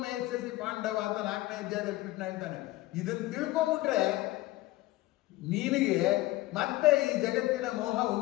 ಮೇಸಸಿ ಪಾಂಡವ ಅಂತ 4ನೇ ಅಧ್ಯಾಯದಲ್ಲಿ ಕೃಷ್ಣ ಹೇಳ್ತಾನೆ. ಇದನ್ನು ತಿಳ್ಕೊಂಡ್ಬಿಟ್ರೆ ನಿನಗೆ ಮತ್ತೆ ಈ ಜಗತ್ತಿನ ಮೋಹ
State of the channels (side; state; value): right; quieter; 18.4 dB